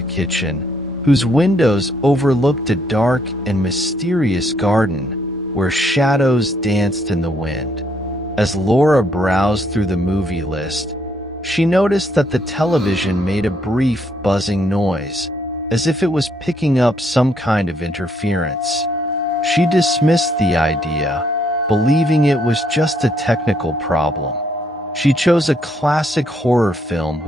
kitchen, whose windows overlooked a dark and mysterious garden where shadows danced in the wind. As Laura browsed through the movie list, she noticed that the television made a brief buzzing noise, as if it was picking up some kind of interference. She dismissed the idea, believing it was just a technical problem. She chose a classic horror film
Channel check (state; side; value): normal; both; correlation 0.71